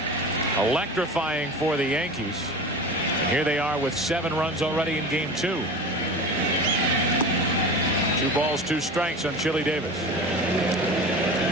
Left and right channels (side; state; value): both; normal; correlation 0.32